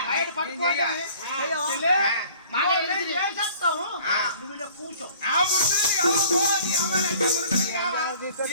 బయట పట్టుకోవాలి చేస్తాము నువ్వు ఇక్కడ కూర్చో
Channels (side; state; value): both; inverted; correlation -0.52